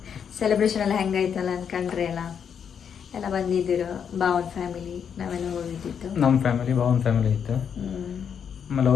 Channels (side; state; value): right; quieter; 7.5 dB